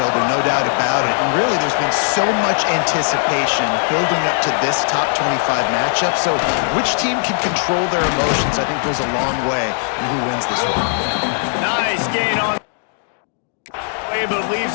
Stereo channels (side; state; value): right; silent; 65 dB below the other